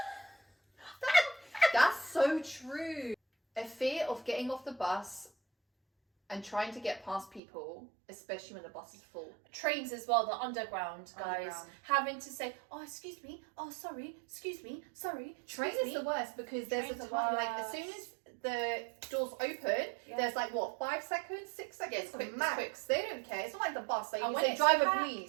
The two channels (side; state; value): left; drops out; at 7.4 s